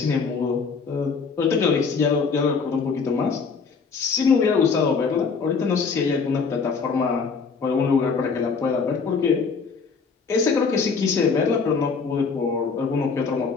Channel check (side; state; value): right; quieter; 5.2 dB